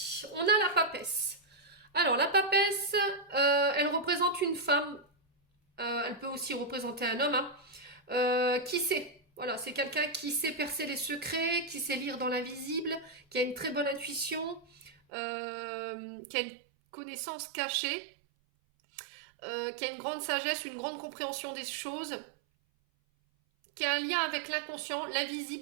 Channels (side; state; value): left; drops out; at 14.9 s